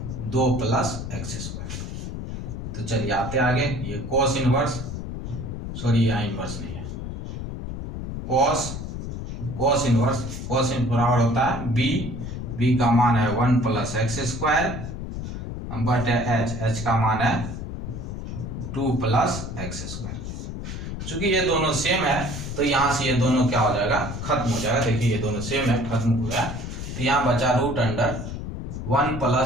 2 प्लस एक्स स्क्वायर। तो चलिए आते आगे, ये कॉस इनवर्स, सॉरी यहाँ इनवर्स नहीं है, कॉस इनवर्स बराबर होता है B का मान है 1 प्लस एक्स स्क्वायर बटे H का मान है 2 प्लस एक्स स्क्वायर। चूंकि ये दोनों सेम है तो यहाँ से ये दोनों क्या हो जाएगा, खत्म हो जाएगा। देखिए ये दोनों सेम है, खत्म हो गया। तो यहाँ बचा root under 1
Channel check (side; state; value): left; noise; rumble, 7 dB below the sound